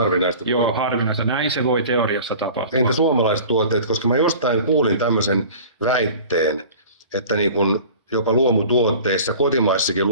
Joo, harvinaista. Näin se voi teoriassa tapahtua. Entä suomalaiset tuotteet, koska mä jostain kuulin tämmöisen väitteen, että niin kun jopa luomutuotteissa, kotimaissakin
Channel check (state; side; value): inverted; both; correlation -0.42